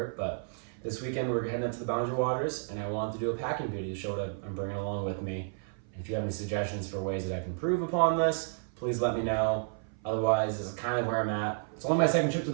but this weekend we're heading up to the Boundary Waters, and I wanted to do a packing video to show what I'm bringing along with me. And if you have any suggestions for ways that I can improve upon this, please let me know. Otherwise, this is kind of where I'm at. It's only my second trip to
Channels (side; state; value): left; silent; 56 dB below the other